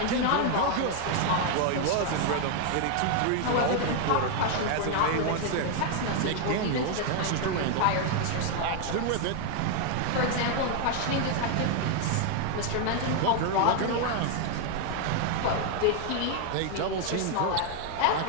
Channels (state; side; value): different; both; correlation 0.00